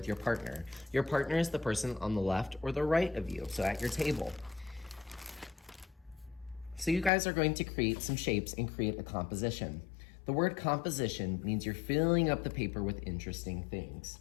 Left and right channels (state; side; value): drops out; right; at 7.1 s